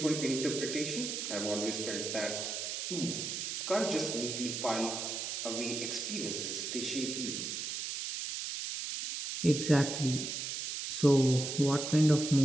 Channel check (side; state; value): right; noise; hiss, 4 dB below the sound